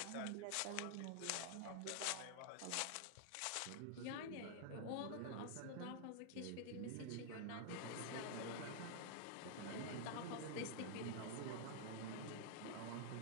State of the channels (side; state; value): both; different; correlation 0.00